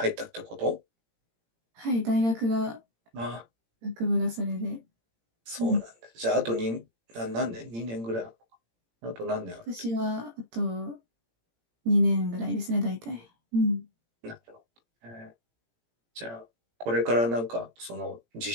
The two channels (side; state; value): left; late; 17 ms